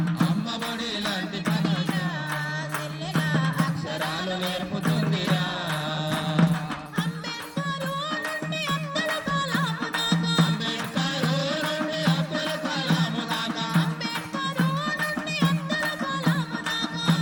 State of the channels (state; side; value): identical; both; correlation 1.00